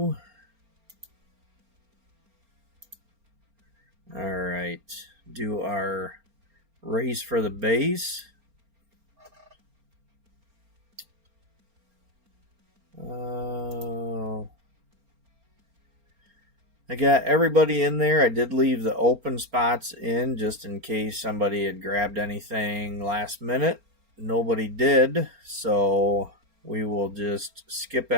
All right, do our race for the base. I got everybody in there. I did leave the open spots in just in case somebody had grabbed anything last minute. Nobody did, so we will just skip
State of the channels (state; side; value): late; left; 4.3 ms